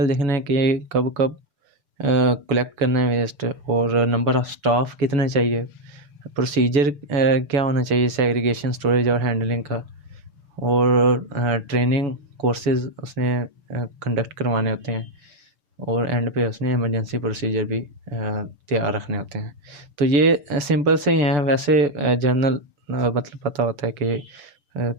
देखना है कि कब कब कलेक्ट करना है वेस्ट और नंबर ऑफ़ स्टाफ कितने चाहिए, प्रोसीजर क्या होना चाहिए सेग्रीगेशन, स्टोरेज और हैंडलिंग का, और ट्रेनिंग कोर्सेज उसने कंडक्ट करवाने होते हैं और एंड पे उसने इमरजेंसी प्रोसीजर भी तैयार रखने होते हैं। तो ये सिंपल से ही हैं, वैसे जनरल मतलब पता होता है कि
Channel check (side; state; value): left; late; 7.0 ms